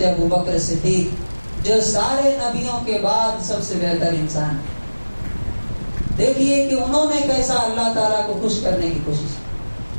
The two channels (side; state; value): both; inverted; correlation -1.00